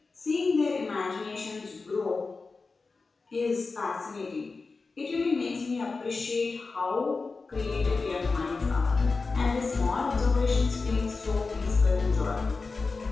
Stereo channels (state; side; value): quieter; right; 4.1 dB